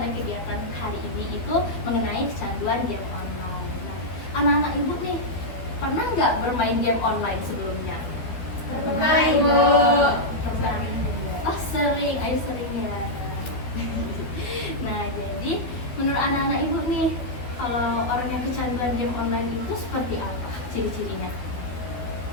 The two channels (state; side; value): late; right; 12 ms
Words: anak-anak ibu nih, pernah nggak bermain game online sebelumnya? Pernah, Ibu. Pernah. Oh sering, ayo sering ya. Nah jadi menurut anak-anak ibu nih, kalau orang yang kecanduan game online itu seperti apa ciri-cirinya?